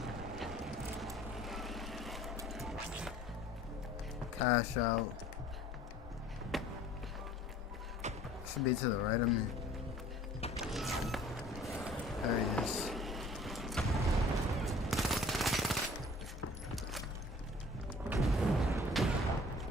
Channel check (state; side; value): normal; both; correlation 0.51